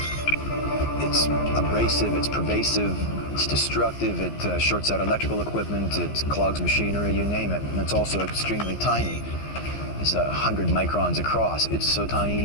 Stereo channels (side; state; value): right; late; 15 ms